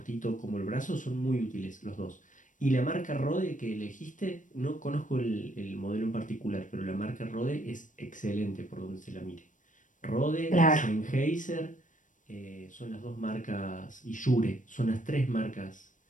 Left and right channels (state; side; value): late; right; 0.37 ms